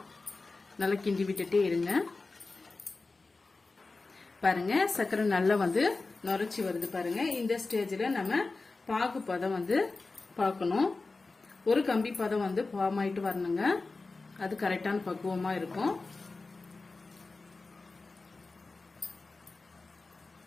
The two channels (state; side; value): quieter; right; 3.7 dB